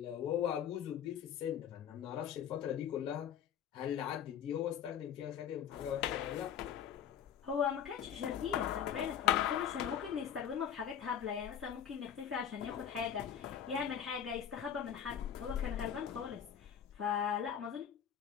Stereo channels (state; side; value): quieter; right; 8.9 dB